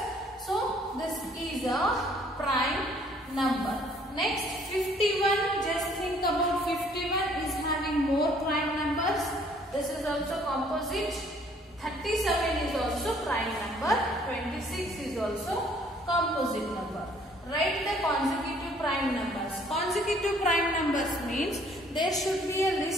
So this is a prime number. Next, 51. Just think about 51 is having more prime numbers. This is also composite. 37 is also prime number. 26 is also composite number. Write the consecutive prime numbers. Consecutive prime numbers means there should be a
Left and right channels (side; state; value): both; normal; correlation 0.60